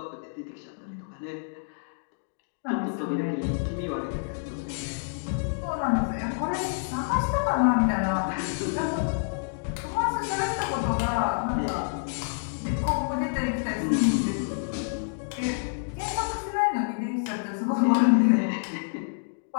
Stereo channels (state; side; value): silent; right; digital silence